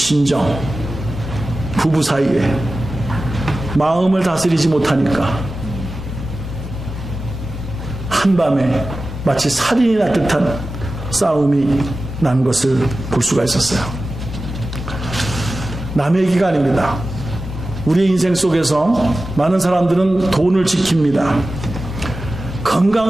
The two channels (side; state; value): left; noise; rumble, 15 dB below the sound